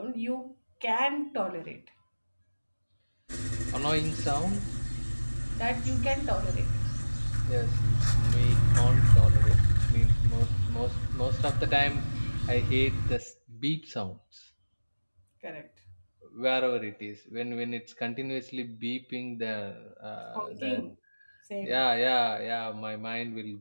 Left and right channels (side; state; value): both; inverted; correlation -1.00